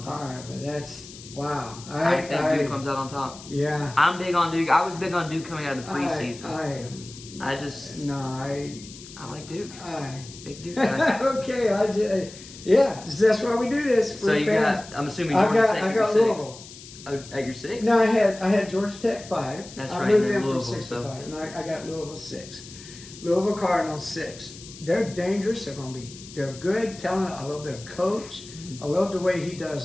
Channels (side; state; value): left; noise; hiss, 17 dB below the sound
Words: top. All right, but that's, wow. I think Duke comes out on top. Yeah. I'm big on Duke. I was big on Duke coming out of the preseason. I like Duke. Big Duke guy. Okay, that's why we do this. So you got, I'm assuming Georgia Tech. I got Louisville. At your 6? No, I had Georgia Tech 5. That's I right. moved in Louisville, from 6 so. to 5, and I got Louisville 6. Louisville Cardinals 6. They're dangerous. They're good, talented. I love their coach. I love the way he